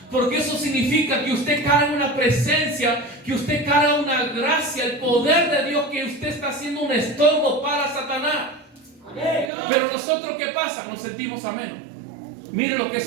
Porque eso significa que usted carga una presencia, que usted carga una gracia, el poder de Dios, que usted está haciendo un estorbo para Satanás. Pero nosotros, ¿qué pasa? Nos sentimos a menos. Miren lo que es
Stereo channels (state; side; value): drops out; left; at 9.5 s